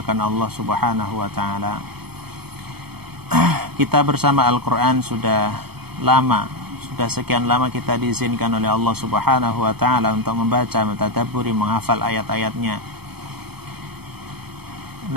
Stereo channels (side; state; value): left; late; 0.97 ms